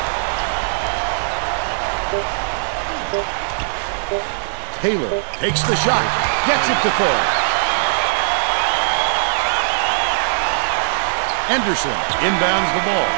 Taylor takes the shot, gets it to fall. Anderson inbounds the ball.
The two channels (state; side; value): silent; left; digital silence